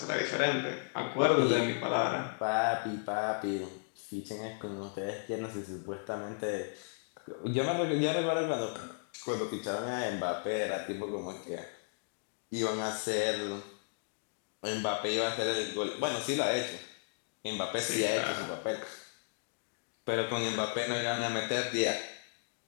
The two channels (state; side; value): silent; right; digital silence